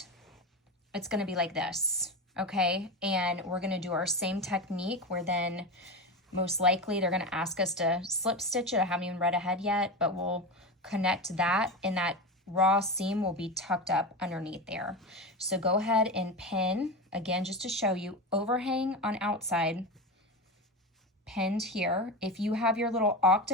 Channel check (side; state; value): both; normal; correlation 0.21